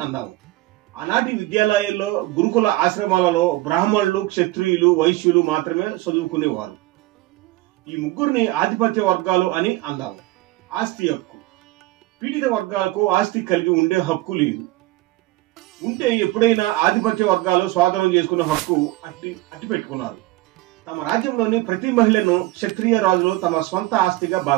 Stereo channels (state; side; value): quieter; left; 18.5 dB